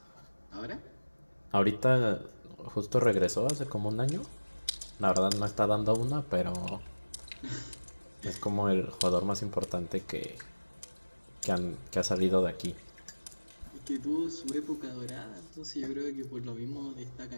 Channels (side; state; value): both; inverted; correlation -1.00